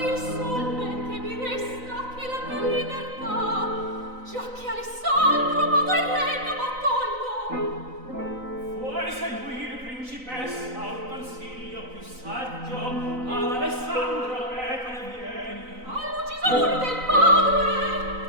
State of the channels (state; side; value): late; left; 3.9 ms